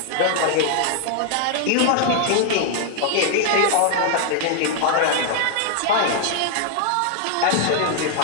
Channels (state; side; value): different; both; correlation 0.00